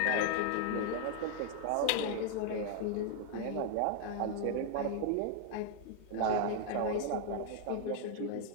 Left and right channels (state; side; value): different; both; correlation 0.00